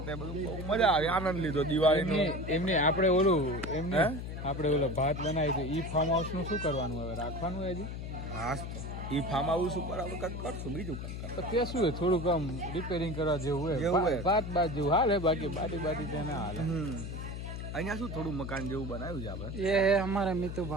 તે બધું મજા આવી આનંદ લીધો દિવાળીનો. એમને આપણે ઓલો ભાત બનાવી તો ઈ ફાર્મ હાઉસ નું શું કરવાનું હવે રાખવાનું હજી? હા ઈ ફાર્મ હાઉસ ઉપર આપણે કંઈક કરશું બીજું કંઈક તો તે શું હોય થોડુંક આમ રિપેરિંગ કરવા જેવું હોય ભાત જેવું હાલે બાકી બાટી ત્યાં ના હાલે. અહીંયા શું થોડું મકાન જેવું બનાવ્યું છે આપણે ये है हमारा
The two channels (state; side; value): noise; left; hum, 6 dB below the sound